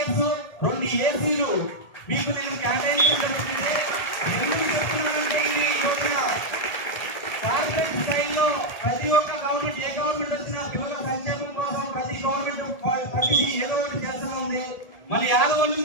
2 ఏసీలు మీకు నేను కేటాయించడం జరుగుతుంది. ఎందుకు చెప్తున్నానంటే ఇది యోజన కార్పొరేట్ స్థాయిలో ప్రతి ఒక్క గవర్నమెంట్, ఏ గవర్నమెంట్ వచ్చినా పిల్లల సంక్షేమం కోసం ప్రతి గవర్నమెంట్ ప్రతిదీ ఏదో ఒకటి చేస్తూ ఉంది. మన యాదవ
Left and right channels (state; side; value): late; right; 1.8 ms